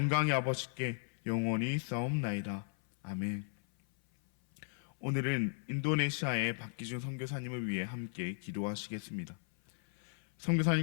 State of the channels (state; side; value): silent; right; 54 dB below the other